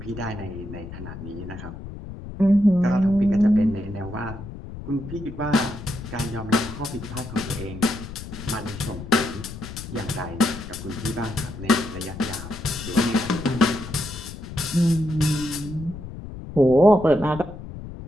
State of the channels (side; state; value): left; noise; rumble, 11 dB below the sound